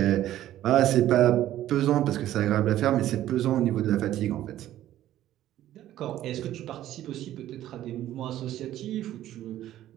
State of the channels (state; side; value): quieter; left; 13.1 dB